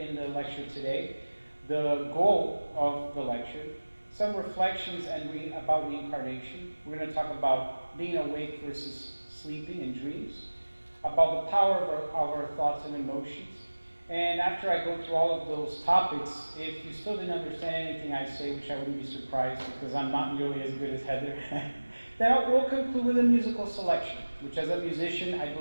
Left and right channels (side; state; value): both; inverted; correlation -1.00